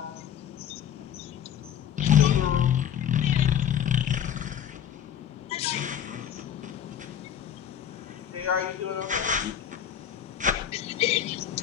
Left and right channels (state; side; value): quieter; right; 9.4 dB